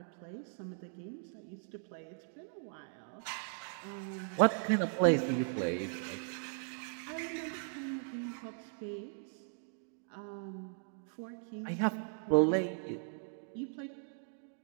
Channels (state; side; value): silent; left; digital silence